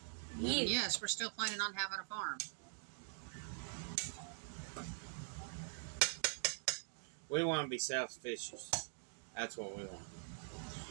Yeah. Yes, we're still planning on having a farm. We want to be self-sufficient. That's what we want.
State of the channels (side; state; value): left; silent; digital silence